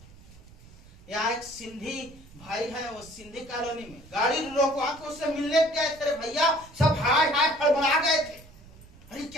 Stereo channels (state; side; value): noise; right; rumble, 22 dB below the sound